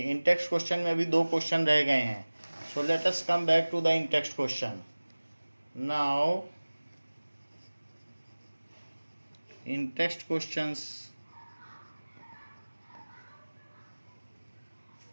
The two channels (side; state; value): both; inverted; correlation -1.00